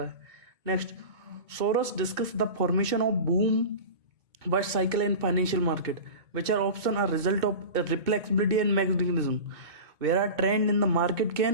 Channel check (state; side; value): late; left; 2.2 ms